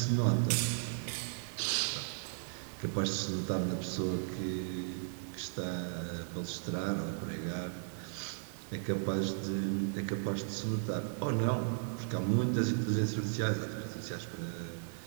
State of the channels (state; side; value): silent; left; 54 dB below the other